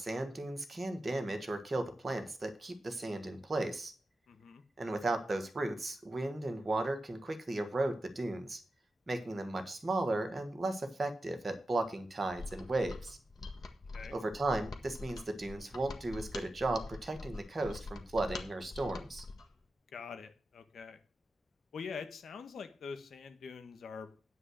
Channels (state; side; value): normal; both; correlation 0.91